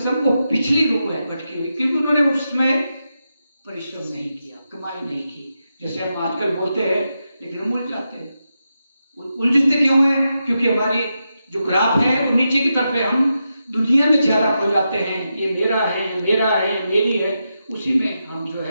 वो पिछली रूह है भटकी हुई, क्योंकि उन्होंने उसमें परिश्रम नहीं किया, कमाई नहीं की। जैसे हम आजकल बोलते हैं, लेकिन हम उलझ जाते हैं। उलझते क्यों हैं? क्योंकि हमारी जो ग्राफ है वो नीचे की तरफ है, हम दुनिया में ज्यादा खो जाते हैं, ये मेरा है, मेरा है, मेरी है, उसी में हम जो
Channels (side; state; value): both; inverted; correlation -0.87